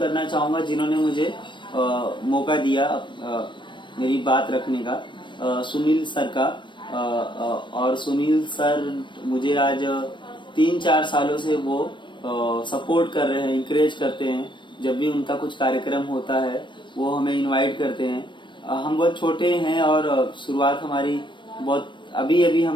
चाहूंगा जिन्होंने मुझे मौका दिया मेरी बात रखने का, सुनील सर का। और सुनील सर मुझे आज 3-4 सालों से वो सपोर्ट कर रहे हैं, इंकरेज करते हैं। जब भी उनका कुछ कार्यक्रम होता है वो हमें इनवाइट करते हैं। हम बहुत छोटे हैं और शुरुआत हमारी बहुत अभी अभी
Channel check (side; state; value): right; late; 0.23 ms